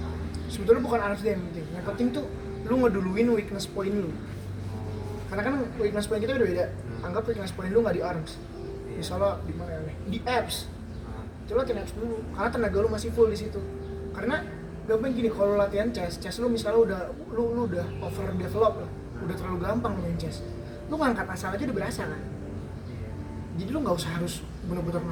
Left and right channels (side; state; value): both; identical; correlation 1.00